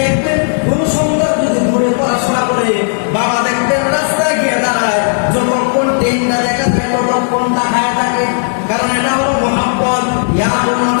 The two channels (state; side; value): silent; right; digital silence